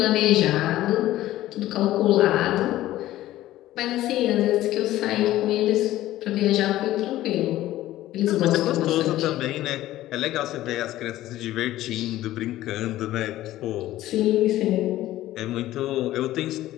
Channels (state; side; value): quieter; right; 14.9 dB